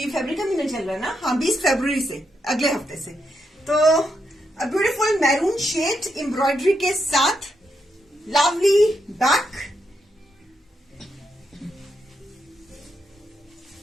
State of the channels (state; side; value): normal; both; correlation 0.82